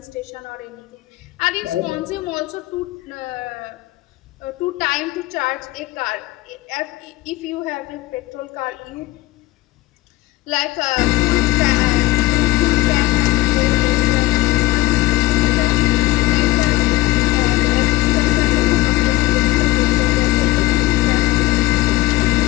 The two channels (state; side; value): quieter; right; 19.3 dB